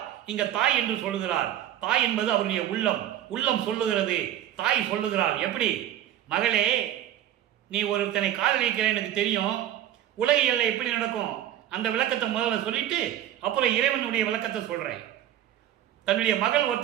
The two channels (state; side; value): quieter; left; 11.8 dB